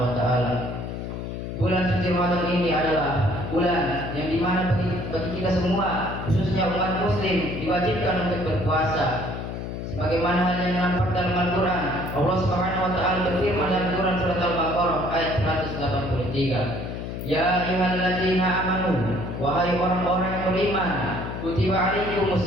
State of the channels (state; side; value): noise; left; hum, 6 dB below the sound